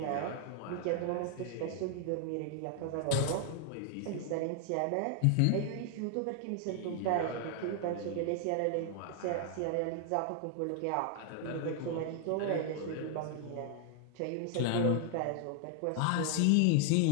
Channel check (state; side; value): different; both; correlation 0.00